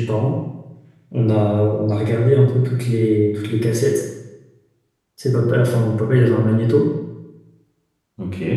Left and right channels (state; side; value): identical; both; correlation 1.00